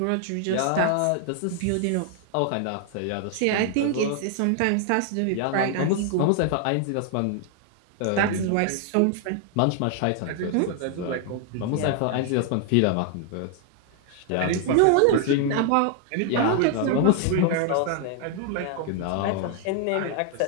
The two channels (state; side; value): different; both; correlation 0.00